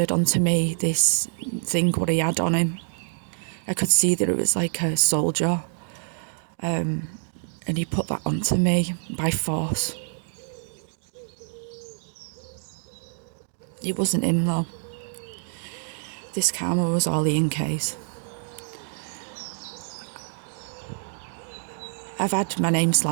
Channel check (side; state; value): left; silent; digital silence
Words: onto me this thing what he had on him. I could see that it was like a soldier, and he put that onto me by force. It wasn't him though. This karma was all Ian K's. I've had my name